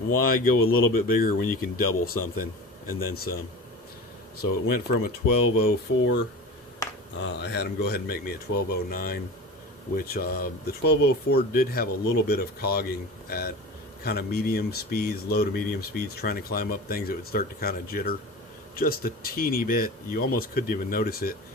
go a little bit bigger when you can double something and then some? So it went from a 1204. I had them go ahead and make me a 1209, which the 1204 did have a little bit of cogging at kind of medium speeds, low to medium speeds, trying to climb up things. It would start to kind of jitter just a teeny bit. You almost couldn't even notice it,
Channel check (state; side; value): normal; both; correlation 0.33